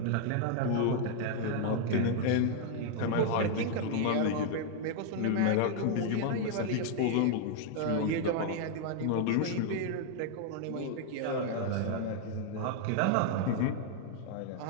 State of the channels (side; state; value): both; different; correlation 0.00